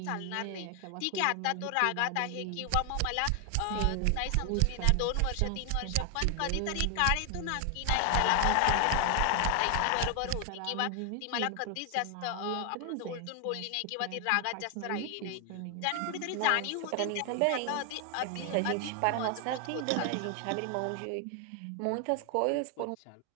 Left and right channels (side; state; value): both; different; correlation 0.00